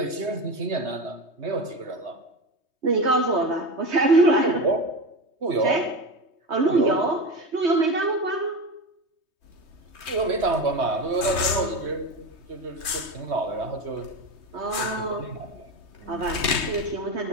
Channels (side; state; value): left; late; 3.2 ms